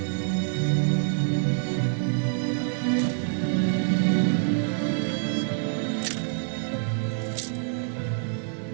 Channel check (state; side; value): silent; left; digital silence